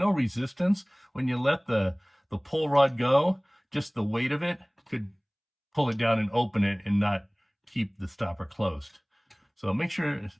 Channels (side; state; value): both; identical; correlation 1.00